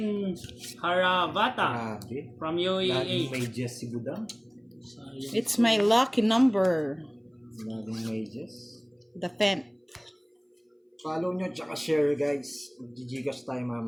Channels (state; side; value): identical; both; correlation 1.00